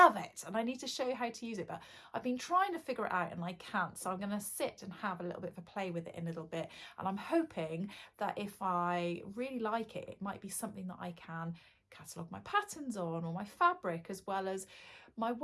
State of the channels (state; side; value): identical; both; correlation 1.00